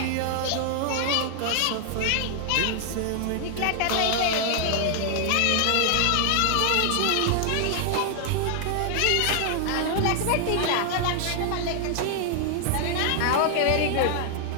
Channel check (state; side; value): different; both; correlation 0.00